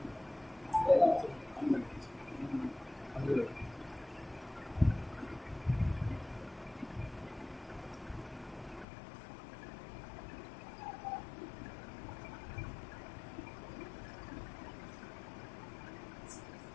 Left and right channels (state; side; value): drops out; right; at 8.8 s